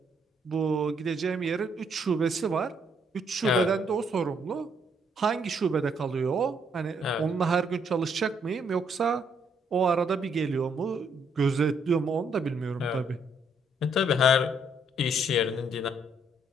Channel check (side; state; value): both; normal; correlation 0.70